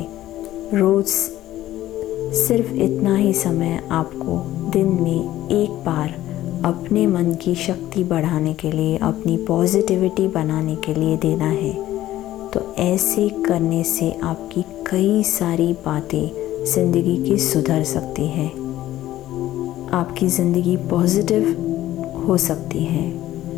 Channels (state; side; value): quieter; right; 14.2 dB